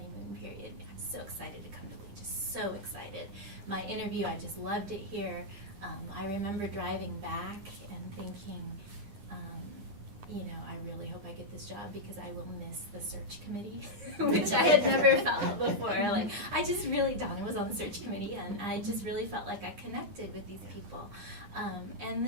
period. I'm so excited to come to Lee, just so excited. My interview, I just loved it here. I remember driving back and thinking, I really hope I get this job because I will miss the search committee, which I had never felt before. Like, Donna was on the search committee, and I just really felt like I connected with these people. And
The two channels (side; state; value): left; late; 9.8 ms